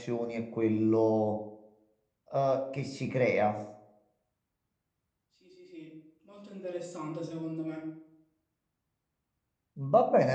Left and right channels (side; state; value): both; identical; correlation 1.00